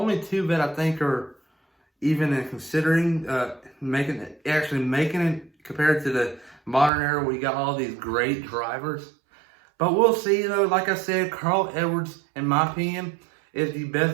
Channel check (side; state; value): left; drops out; at 6.9 s